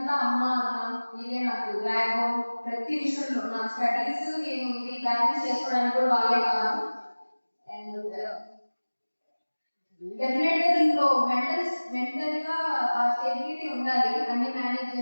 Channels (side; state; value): both; inverted; correlation -1.00